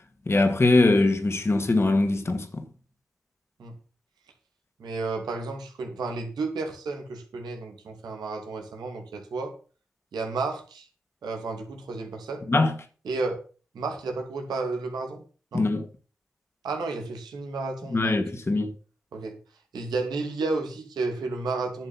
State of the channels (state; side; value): normal; both; correlation 0.85